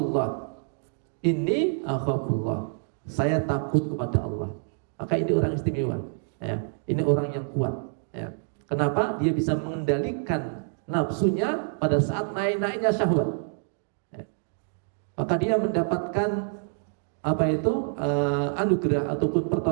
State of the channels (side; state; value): left; silent; digital silence